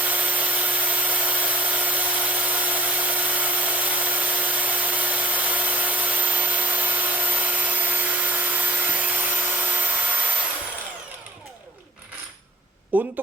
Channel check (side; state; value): both; normal; correlation 0.41